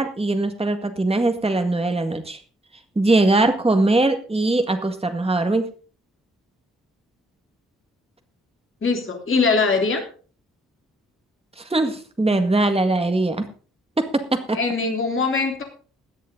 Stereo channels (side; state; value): both; normal; correlation 0.68